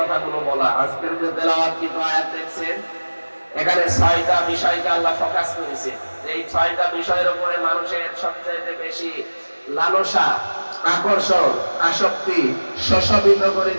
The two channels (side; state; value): both; inverted; correlation -1.00